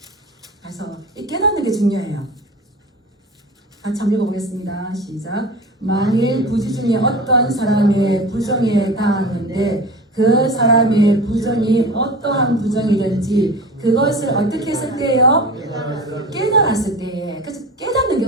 그래서 이 깨닫는 게 중요해요. 같이 한번 읽어보겠습니다. 시작. 만일 부지 중에 어떤 사람의 부정에 당하는데 그 사람의 부정이 어떠한 부정이든지 그것을 어떻게 했을 때요? 깨달았을 때에. 그래서 깨닫는 게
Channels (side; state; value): both; normal; correlation 0.34